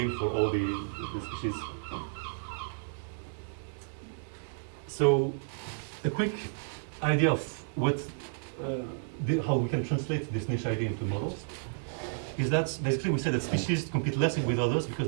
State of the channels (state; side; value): silent; left; digital silence